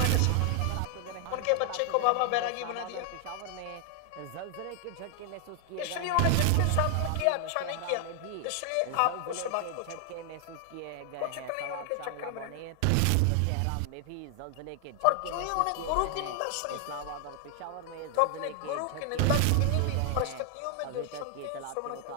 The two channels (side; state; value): both; different; correlation 0.00